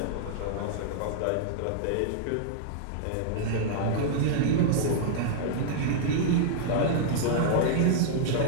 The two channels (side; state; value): both; different; correlation -0.02